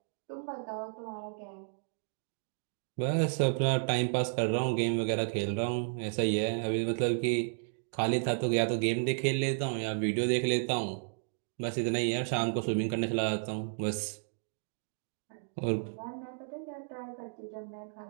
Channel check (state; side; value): silent; left; digital silence